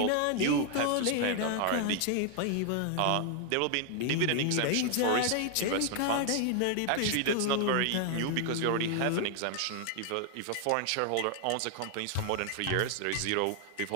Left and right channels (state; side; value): different; both; correlation 0.00